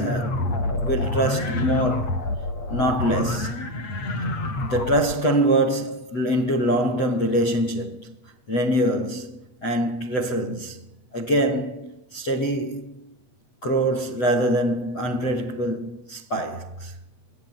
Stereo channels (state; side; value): late; right; 8.0 ms